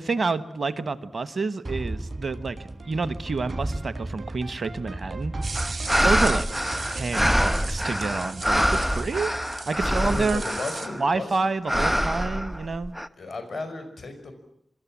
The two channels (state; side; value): normal; both; correlation 0.96